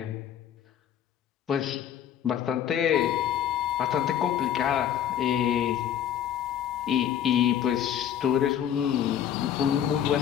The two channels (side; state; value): right; quieter; 9.9 dB